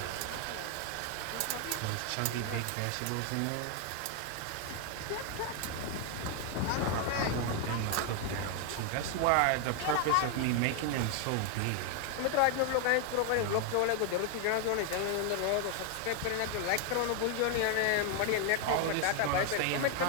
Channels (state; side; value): different; both; correlation 0.00